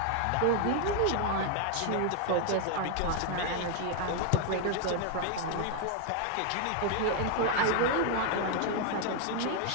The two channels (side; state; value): both; different; correlation 0.00